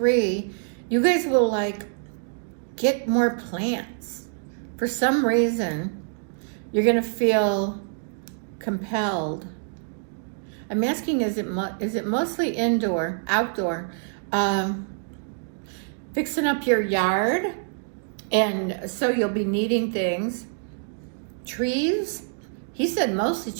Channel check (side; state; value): left; silent; digital silence